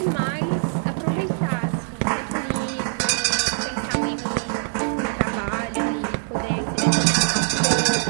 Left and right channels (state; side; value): silent; left; digital silence